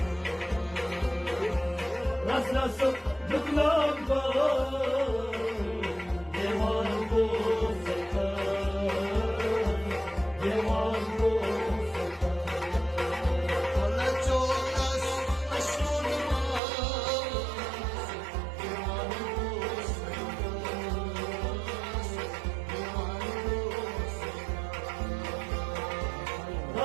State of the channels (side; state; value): left; drops out; at 16.6 s